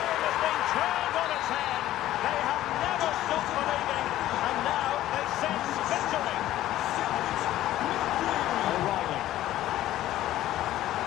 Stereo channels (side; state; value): right; quieter; 14.0 dB